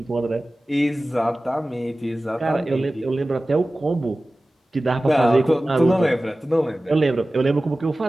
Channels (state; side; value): normal; both; correlation 0.96